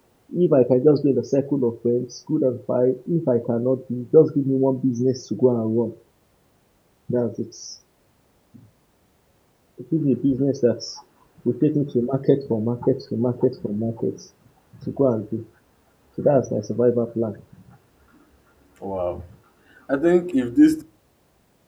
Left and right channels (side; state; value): both; identical; correlation 1.00